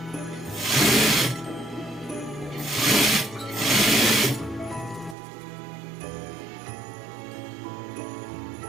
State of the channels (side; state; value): left; drops out; at 5.2 s